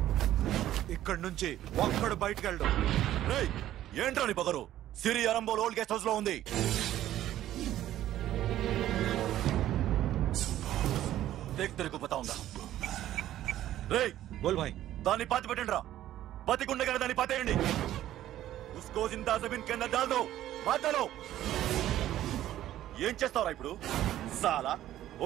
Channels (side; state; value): left; quieter; 13.1 dB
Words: ఇక్కడి నుంచి ఒక్కడు బయటకు వెళ్ళడు ఏంట్రా నీ పగరు సిరి అరంబోల్ ఓల్డ్ గెస్ట్ హౌస్ లో ఉంది తెరకు పతా ఉందా రేయ్ బోల్ భాయ్ దాన్ని పాతి పెట్టండి రా బతికుండగానే దాన్ని పాతేయండి ఉస్కో జిందా జమీన్ కే అందర్ డాల్ దో మాటలో ఏం చేస్తావురా ఇప్పుడు సాలా